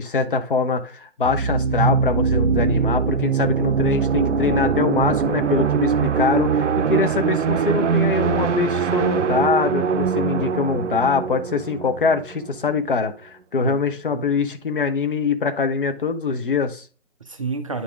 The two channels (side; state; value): both; normal; correlation 0.02